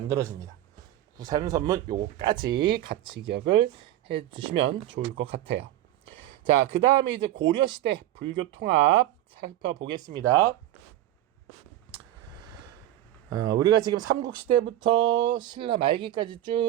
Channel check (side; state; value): left; quieter; 13.7 dB